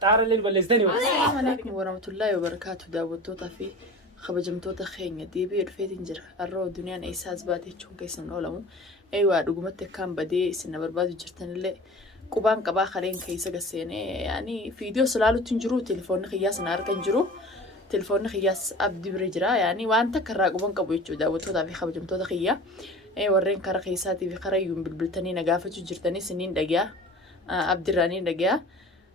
xaaralleen balleessitanii Assalamu alaikum warahmatullahi wabarakatuh daawwattoota fi kabajamtoota keenya deebi'ee dhufeetiin jira har'oo duniyaan eessaas baatee jechuun keessan oolamu eewaa dhugumatti akkaan badee isin na barbaadu jirtanillee qubaan qabaa kareen keessa gasseenee yaani viidiyoo salaalutti hin jiru telefoonni kiyyaas na argan jiru telefoonni kiyyaas abdii bira jira yaani waan takka irraa quban qabu jechuudha daawwattootaa fi kabajamtoota kiyyaa warreen karaa keessaatii fi karaa iyyuun bilbiltanii na gaafachuu jirtanii isiniin dhagaa abdirraanii dhagaa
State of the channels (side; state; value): both; normal; correlation 0.38